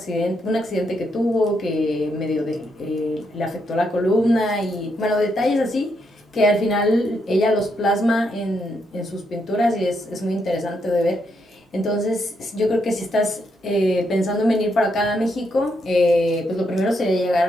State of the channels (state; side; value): normal; both; correlation 0.79